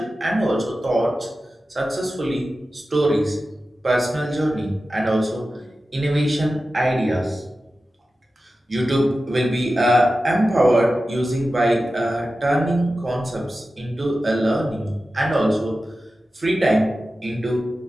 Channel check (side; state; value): both; normal; correlation 0.94